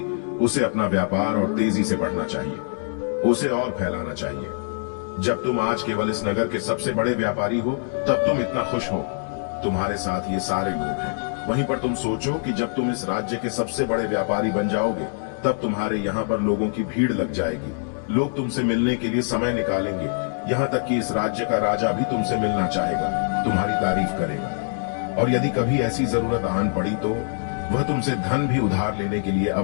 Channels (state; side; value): silent; right; 63 dB below the other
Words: उसे अपना व्यापार और तेजी से बढ़ना चाहिए, उसे और फैलाना चाहिए। जब तुम आज केवल इस नगर के सबसे बड़े व्यापारी हो तब तुम इतना खुश हो, तुम्हारे साथ ये सारे लोग हैं। वहीं पर तुम सोचो कि जब तुम इस राज्य के सबसे बड़े व्यापारी बन जाओगे तब तुम्हारे यहाँ पर लोगों की भीड़ लग जाएगी, लोग तुमसे मिलने के लिए समय निकालेंगे, यहाँ तक कि इस राज्य का राजा भी तुमसे मिलना चाहेगा, तुम्हारी तारीफ करेगा। और यदि कभी ऐसी जरूरत आन पड़ी तो वह तुमसे धन भी उधार लेने के लिए